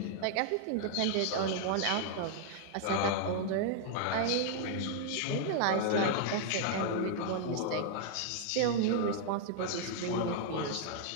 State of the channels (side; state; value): both; different; correlation 0.00